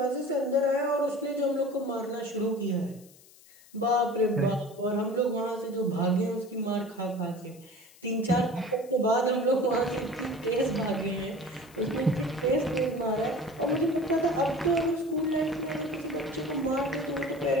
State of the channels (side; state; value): left; noise; hiss, 25 dB below the sound